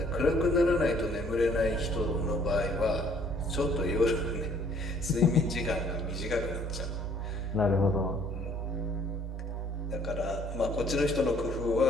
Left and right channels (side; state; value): both; normal; correlation 0.60